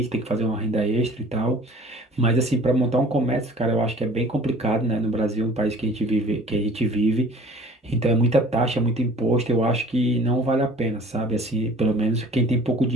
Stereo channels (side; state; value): both; normal; correlation 0.48